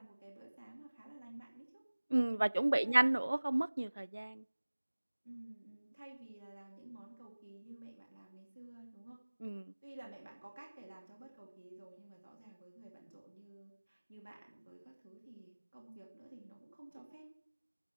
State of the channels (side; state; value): both; inverted; correlation -1.00